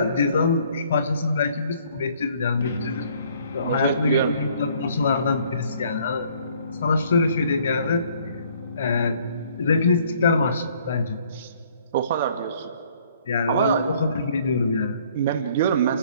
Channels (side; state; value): both; inverted; correlation -0.61